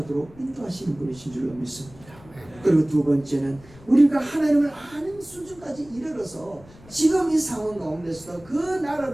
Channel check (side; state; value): left; noise; rumble, 22 dB below the sound